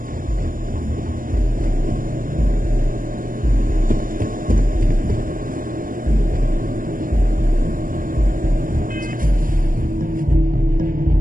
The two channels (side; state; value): left; late; 0.40 ms